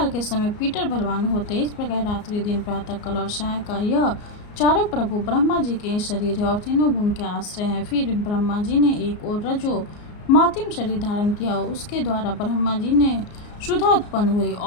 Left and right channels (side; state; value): right; late; 34 ms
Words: के समय पीटर बलवान होते। इस प्रकार रात्रि, दिन, प्रातः काल और सायकाल यह चारों प्रभु ब्रह्मा जी के शरीर है और तीनों गुण के आश्रय हैं। फिर ब्रह्मा जी ने एक और रजो मातिम शरीर धारण किया। उसके द्वारा ब्रह्मा जी ने सुधा उत्पन्न हुई